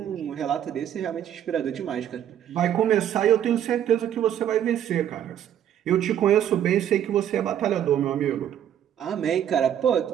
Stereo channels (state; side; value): quieter; left; 10.3 dB